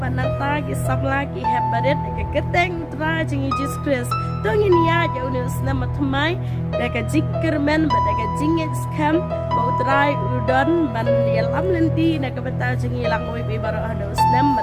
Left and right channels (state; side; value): identical; both; correlation 1.00